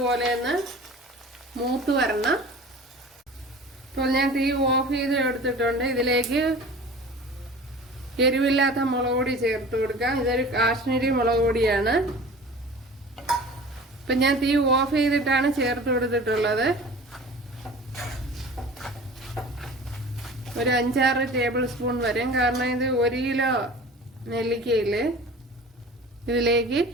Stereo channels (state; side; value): normal; both; correlation 0.40